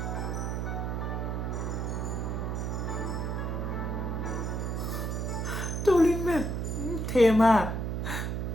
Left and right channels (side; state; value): right; noise; hum, 1 dB below the sound